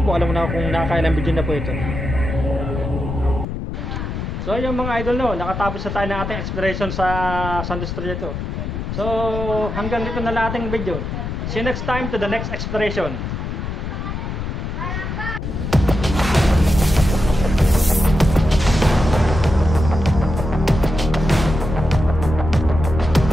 alam na kung nakakailang video na po ito. So yung mga idol, no, nakatapos na tayo ng ating exploration sa Santos Strieto. So hanggang dito na lang ating video. See you next time to the next exploration.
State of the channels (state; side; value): noise; left; rumble, 5 dB below the sound